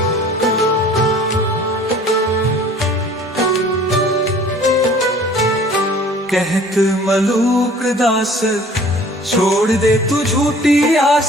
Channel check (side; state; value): both; normal; correlation 0.50